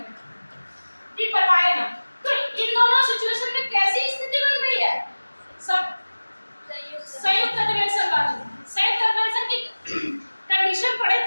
ठीक, बताएगा। तो इन दोनों सिचुएशन में कैसी स्थिति बन रही है, सब संयुक्त अधिवेशन वाली। संयुक्त अधिवेशन की कंडीशन पढ़े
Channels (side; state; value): both; inverted; correlation -1.00